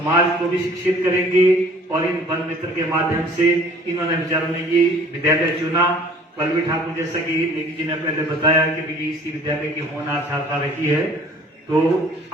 को भी शिक्षित करेंगे और इन वन मित्र के माध्यम से इन्होंने बेचारों ने ये विद्यालय चुना। पल्लवी ठाकुर जैसा कि नेगी जी ने पहले बताया कि इसी विद्यालय की होनहार छात्रा रही है, तो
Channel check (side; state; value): both; normal; correlation 0.51